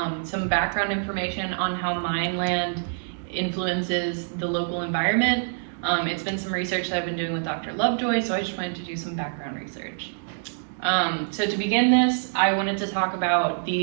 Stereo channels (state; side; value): silent; left; digital silence